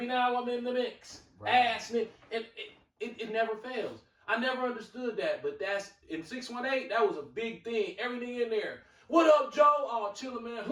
now? I'm in the mix. Right. Ass nigga. It never fails. I never understood that, but that's in 618. That was a big thing. Everything in there. What up, Joe? Oh, chillin', man.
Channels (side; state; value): both; identical; correlation 1.00